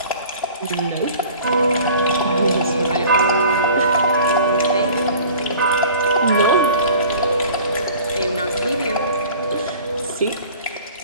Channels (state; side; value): inverted; both; correlation -0.46